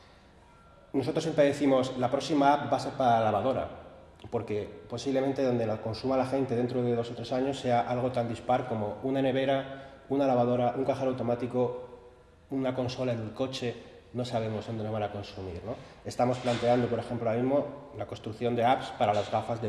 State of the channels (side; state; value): both; identical; correlation 1.00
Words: Nosotros siempre decimos, la próxima app va a ser para la lavadora, porque posiblemente donde la consuma la gente dentro de 2 o 3 años sea algo tan dispar como una nevera, una lavadora, un cajero automático, una consola en el coche. No sabemos dónde nos van a consumir, ¿no? Estamos planteando, por ejemplo, ahora mismo la construcción de apps para las gafas de